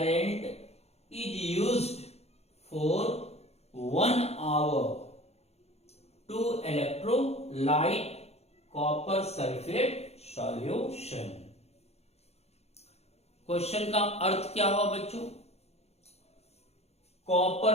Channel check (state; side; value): late; right; 0.30 ms